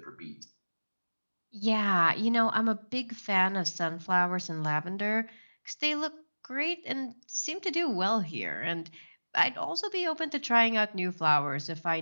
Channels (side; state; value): both; inverted; correlation -1.00